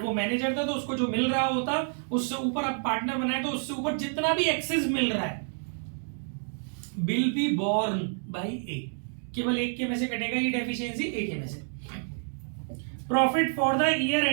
वो manager था तो उसको जो मिल रहा होता उससे ऊपर अब पार्टनर बनाए तो उससे ऊपर जितना भी एक्सेस मिल रहा है विल बी बोर्न बाई ए, केवल एक के में से कटेगा ये डेफिशिएंसी, एक के में से। Profit for the year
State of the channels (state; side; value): silent; left; 55 dB below the other